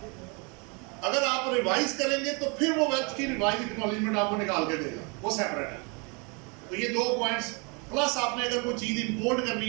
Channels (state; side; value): quieter; left; 32.0 dB